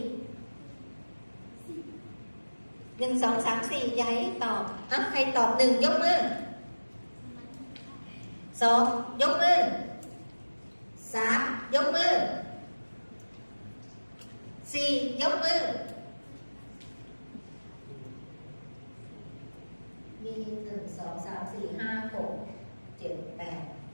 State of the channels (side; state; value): both; inverted; correlation -1.00